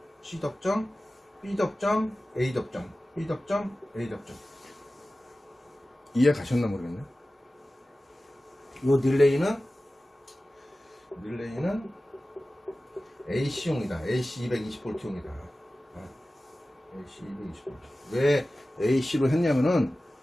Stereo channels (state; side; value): normal; both; correlation 0.96